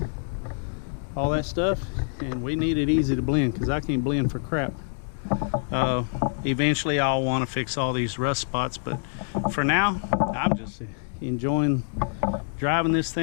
All that stuff. And we need it easy to blend because I can't blend for crap. Eventually I'll want to fix all these rust spots, but for now I'm just enjoying driving this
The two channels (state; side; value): silent; right; 61 dB below the other